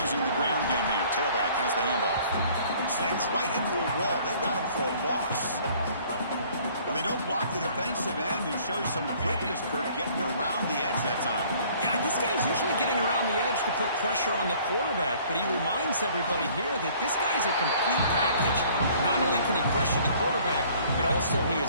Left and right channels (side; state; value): both; inverted; correlation -0.56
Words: Using the ground game here. Tailback has the handoff. Slams right into a wall. They've got him for a loss. Well, they don't block the defensive end and show some quickness, Kirk, getting around the edge that time. Yeah, this guy's usually getting around the edge to put pressure on the quarterback, but he reminds everybody here that this guy's a complete package. Not only can he pressure the quarterback, but also he is